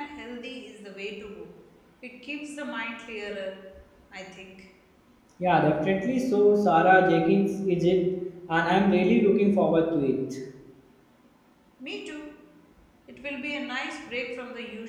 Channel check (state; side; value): identical; both; correlation 1.00